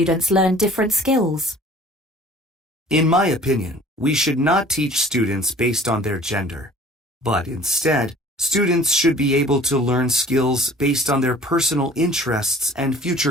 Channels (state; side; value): normal; both; correlation 0.48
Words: learn different skills? In my opinion, we should not teach students based on their gender, but instead, students should be able to learn skills based on their personal interests and